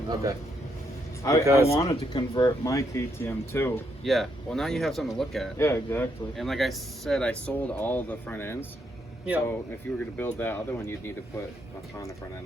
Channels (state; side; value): normal; both; correlation 0.76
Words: Okay. I Because- wanted to convert my KTM too. Yeah. Well, now you have something to look at. Yeah, exactly. And like I said, I sold all the front ends. Yeah. So if you were going to build that other one, you'd need to put a Honda front